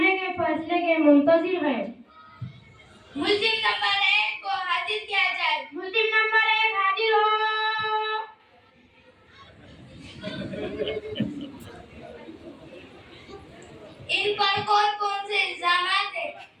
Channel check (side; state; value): both; identical; correlation 1.00